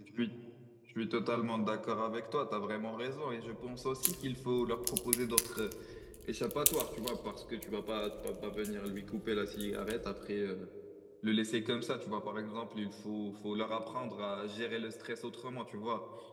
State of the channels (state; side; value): identical; both; correlation 1.00